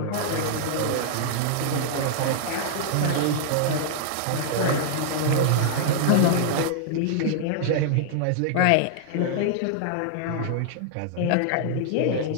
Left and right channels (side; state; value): both; different; correlation -0.01